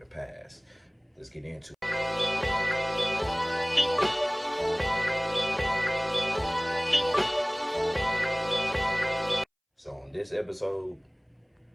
past? Let's get into it. So on this episode,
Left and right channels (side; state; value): both; identical; correlation 1.00